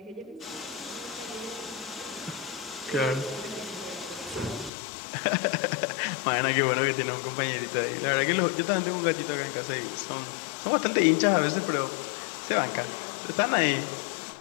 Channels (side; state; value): right; drops out; at 4.7 s